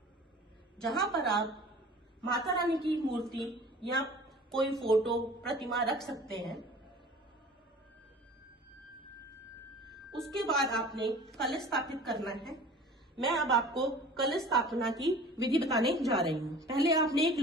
जहां पर आप माता रानी की मूर्ति या कोई फोटो प्रतिमा रख सकते हैं। उसके बाद आपने कलश स्थापित करना है। मैं अब आपको कलश स्थापना की विधि बताने जा रही हूँ। पहले आपने एक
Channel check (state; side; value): normal; both; correlation 0.44